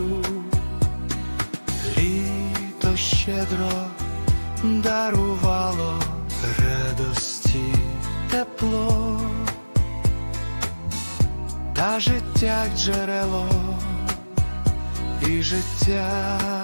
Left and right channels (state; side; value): inverted; both; correlation -1.00